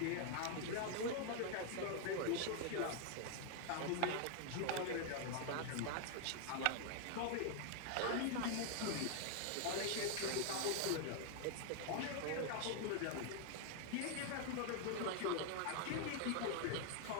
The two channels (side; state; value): both; different; correlation 0.00